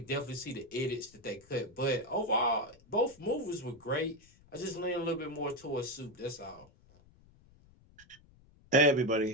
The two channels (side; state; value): left; noise; rumble, 27 dB below the sound